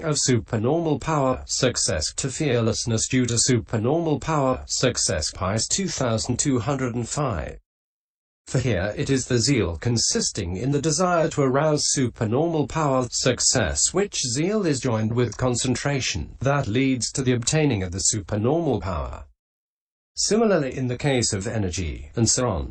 of supernormal power, success to fearlessness due to supernormal power, success. Paþis 2205. For here it is the zeal consisting in the desire to arouse supernormal power, success, which zeal is joined with concentration, that leads to the obtaining of the supernormal power. Similarly in the case of energy, and so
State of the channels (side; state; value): both; identical; correlation 1.00